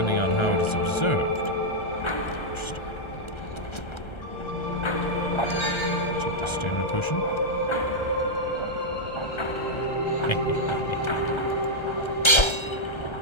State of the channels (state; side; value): late; right; 1.3 ms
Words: on how it is observed. Interesting. Take the stamina potion.